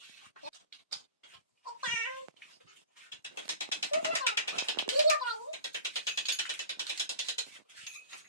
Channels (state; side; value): inverted; both; correlation -0.40